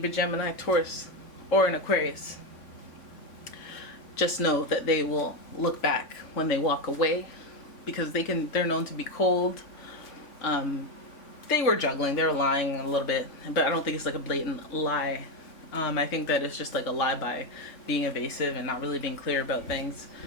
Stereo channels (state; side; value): late; right; 3.5 ms